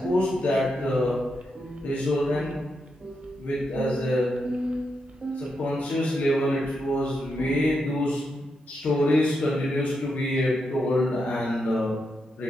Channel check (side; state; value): both; normal; correlation 0.84